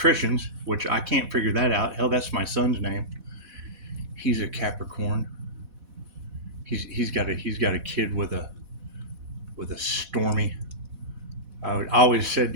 which I can't figure that out. Hell, that's my son's name. He's a Capricorn. He's got a kid with a stormy. I always said,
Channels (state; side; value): late; left; 4.1 ms